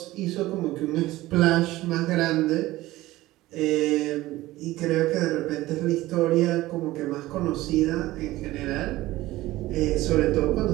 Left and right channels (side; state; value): left; quieter; 17.3 dB